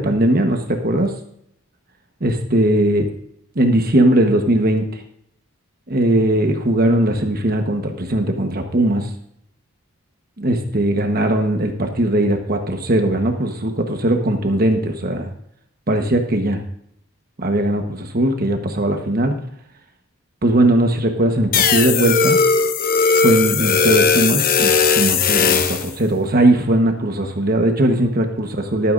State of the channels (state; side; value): normal; both; correlation 0.48